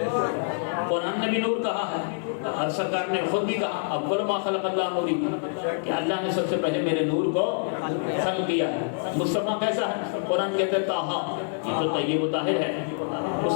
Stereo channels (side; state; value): right; silent; 61 dB below the other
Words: قرآن نے بھی نور کہا ہے، اور سرکار نے خود بھی کہا اول ما خلق اللہ نوری، کہ اللہ نے سب سے پہلے میرے نور کو خلق کیا ہے۔ مصطفیٰ کیسا ہے؟ قرآن کہتا ہے طٰہٰ، یہ تو طیب و طاہر ہے۔